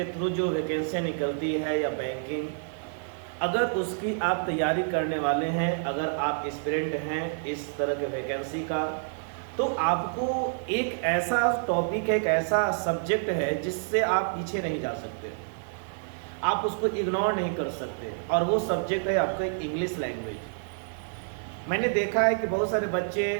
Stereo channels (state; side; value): silent; left; 59 dB below the other